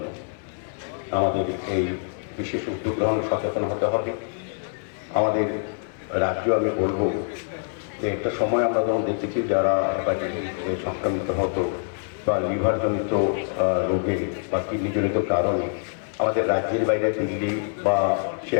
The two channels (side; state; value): right; silent; 60 dB below the other